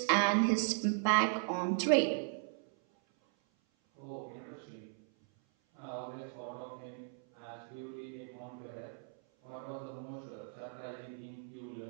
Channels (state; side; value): silent; left; 53 dB below the other